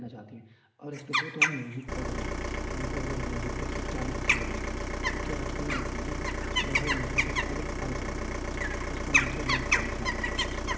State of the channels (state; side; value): identical; both; correlation 1.00